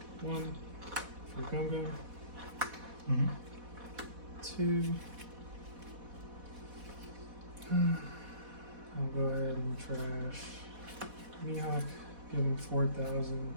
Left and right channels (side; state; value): left; late; 4.1 ms